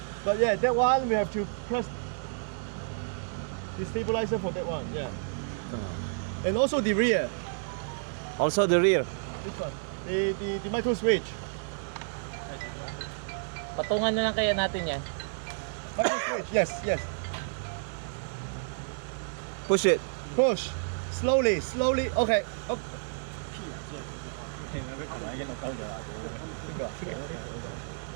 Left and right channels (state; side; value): silent; left; digital silence